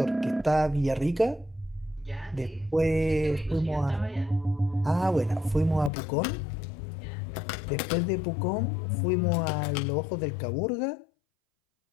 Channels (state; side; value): drops out; right; at 5.9 s